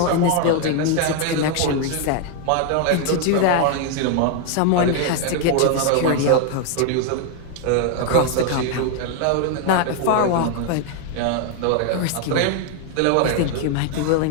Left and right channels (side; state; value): both; different; correlation 0.00